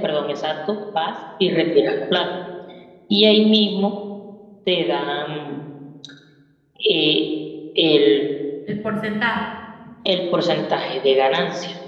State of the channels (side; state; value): both; identical; correlation 1.00